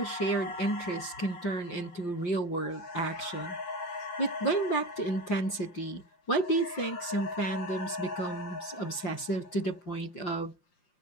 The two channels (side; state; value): right; late; 5.7 ms